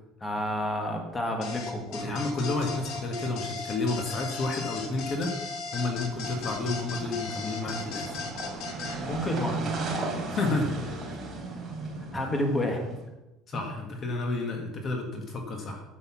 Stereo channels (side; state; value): both; normal; correlation 0.58